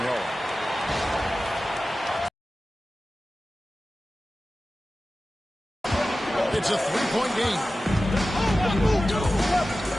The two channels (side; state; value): both; normal; correlation 0.95